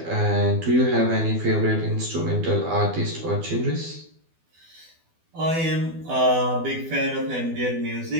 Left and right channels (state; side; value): late; left; 12 ms